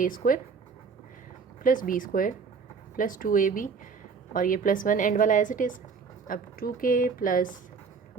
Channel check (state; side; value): quieter; left; 5.4 dB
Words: square plus b square plus 2ab, और ये प्लस 1 एंड वाला एज इट इज़। अब 2k plus